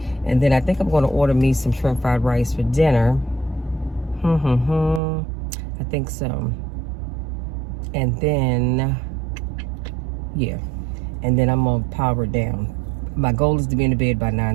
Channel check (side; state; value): left; drops out; at 5.0 s